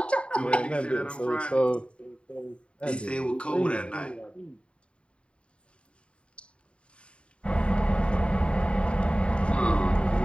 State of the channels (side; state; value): right; late; 0.057 ms